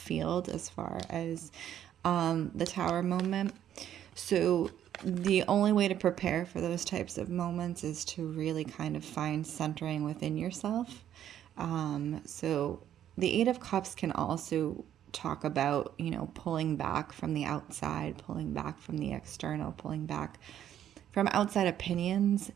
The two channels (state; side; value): quieter; left; 10.7 dB